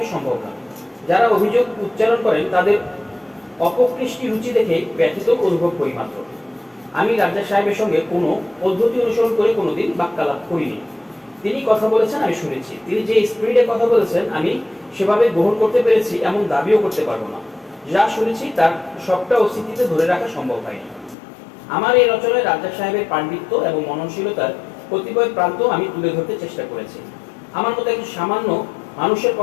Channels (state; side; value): drops out; right; at 21.2 s